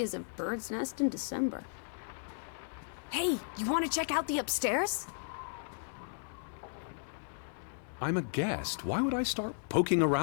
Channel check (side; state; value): right; silent; digital silence